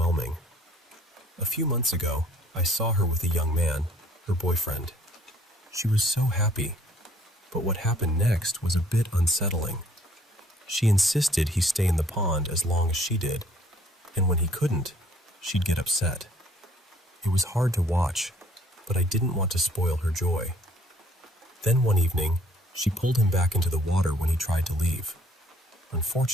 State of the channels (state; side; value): normal; both; correlation 0.59